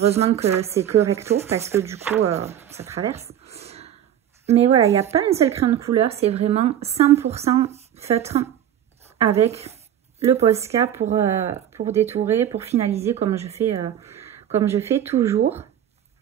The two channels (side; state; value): left; quieter; 10.5 dB